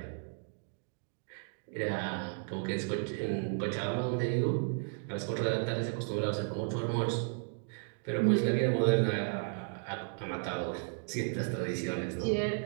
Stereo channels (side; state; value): left; silent; 55 dB below the other